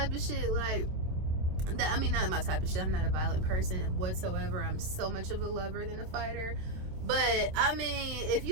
of shit. Like, not my type of shit. I'm not a violent person whatsoever. I'm so much of a lover than a fighter. But I mean, if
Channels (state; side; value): late; left; 27 ms